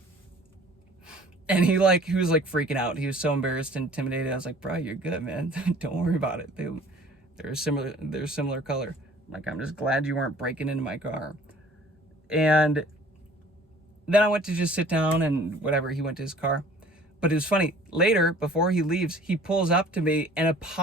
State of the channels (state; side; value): normal; both; correlation 0.50